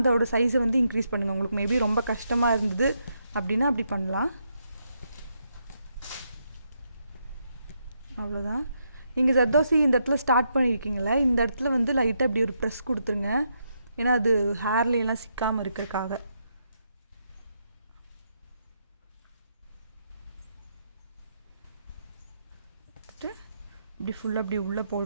சைஸை வந்து இன்க்ரீஸ் பண்ணுங்கள். உங்களுக்கு மேபி ரொம்ப கஷ்டமாக இருந்தது அப்படின்னா அப்படி பண்ணலாம். அவ்வளோதான். நீங்கள் ஜர்தோசி இந்த இடத்துல ஸ்டார்ட் பண்ணியிருக்கீங்களே, இந்த இடத்துல வந்து லைட்டாக இப்படி ஒரு ப்ரெஸ் கொடுத்துருங்க. ஏன்னா அது ஹேர்லையெல்லாம் சிக்காமல் இருக்கிறதுக்காக. இப்படி ஃபுல்லாக அப்படி உள்ளே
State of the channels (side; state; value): both; inverted; correlation -0.79